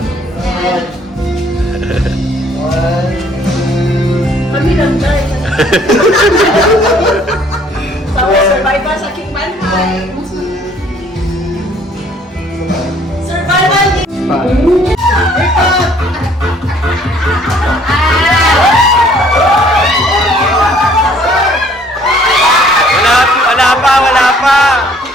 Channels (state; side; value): normal; both; correlation 0.59